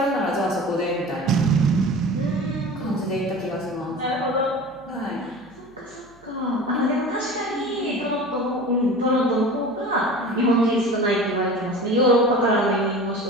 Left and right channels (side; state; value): right; noise; hum, 29 dB below the sound